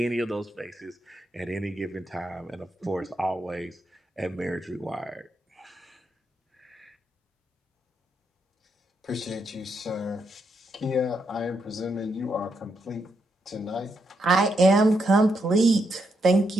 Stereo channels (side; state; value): both; normal; correlation 0.80